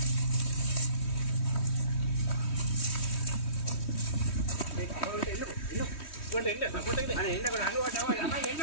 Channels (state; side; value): late; right; 3.1 ms